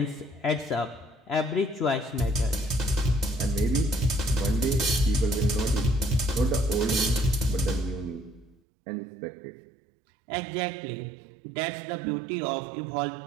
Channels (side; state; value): left; drops out; at 8.6 s